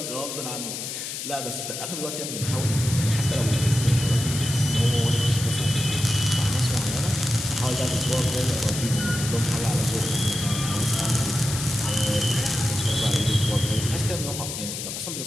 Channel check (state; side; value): noise; left; hiss, 6 dB below the sound